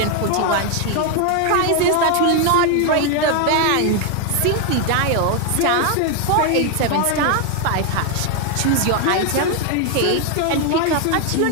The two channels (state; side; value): different; both; correlation 0.01